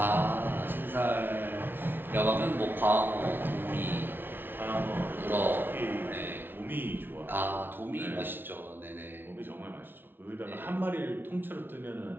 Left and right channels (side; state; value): left; late; 0.10 ms